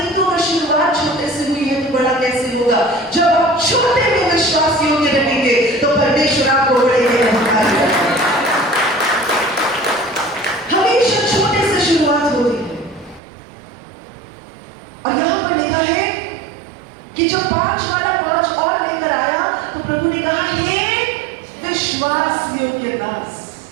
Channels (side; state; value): left; drops out; at 13.2 s